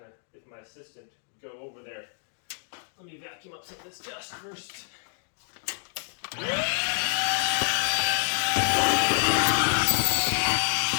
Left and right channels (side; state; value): right; silent; 60 dB below the other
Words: of, if my assistant would go over there. Let me vacuum up some of this dust first.